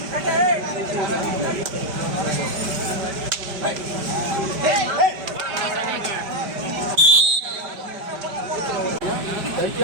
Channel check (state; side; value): late; left; 5.1 ms